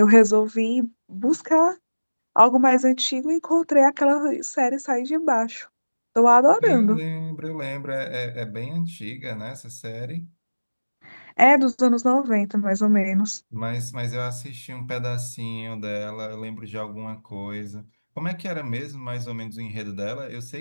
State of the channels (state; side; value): inverted; both; correlation -1.00